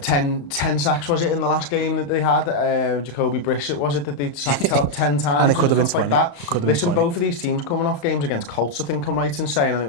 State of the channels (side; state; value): right; late; 35 ms